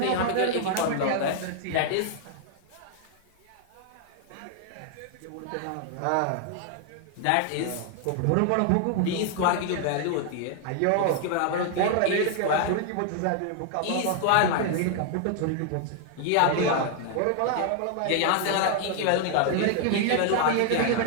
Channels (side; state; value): both; different; correlation 0.00